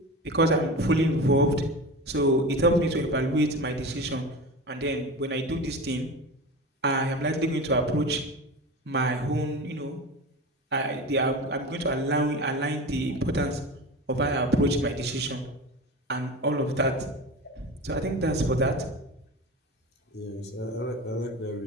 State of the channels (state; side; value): normal; both; correlation 0.29